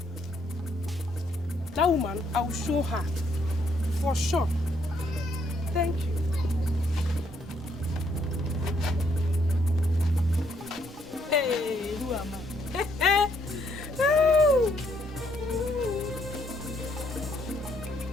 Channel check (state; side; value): normal; both; correlation 0.71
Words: That woman, I will show her. For sure. Thank you. Hey, who am I?